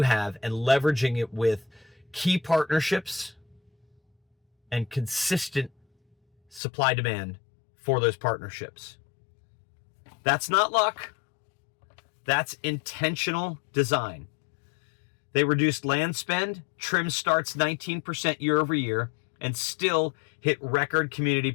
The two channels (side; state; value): right; drops out; at 6.6 s